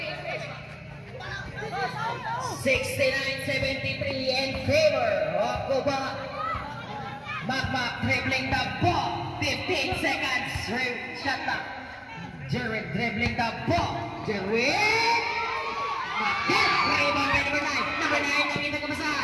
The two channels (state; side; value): identical; both; correlation 1.00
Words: 69-73 in favor of Cuba. Makmak dribbling the ball. 15 seconds. Shot clock. Jared dribbling the ball. Jared. Rebound by number 9. Number 9 ang